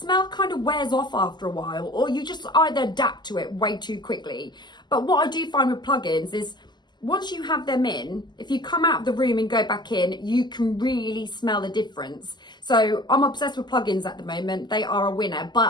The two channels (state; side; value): late; right; 0.21 ms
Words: kind of wears off after a while, or you just either adapt to it way too quickly. But what I do find with plugins is once you have them in, if you come out of the room and go back in, you can really smell the difference. So I'm obsessed with plugins at the moment. They are a winner,